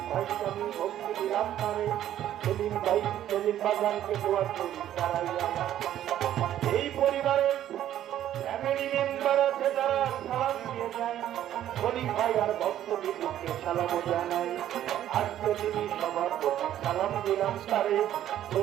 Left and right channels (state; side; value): quieter; left; 11.8 dB